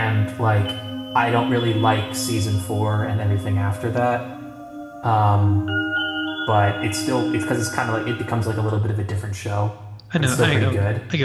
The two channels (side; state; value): both; identical; correlation 1.00